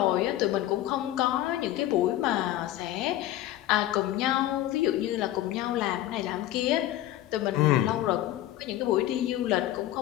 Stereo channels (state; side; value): quieter; right; 14.0 dB